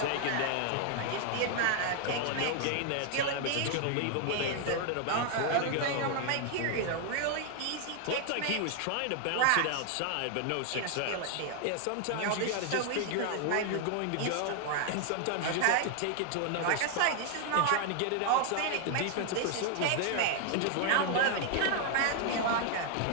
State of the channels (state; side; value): different; both; correlation 0.00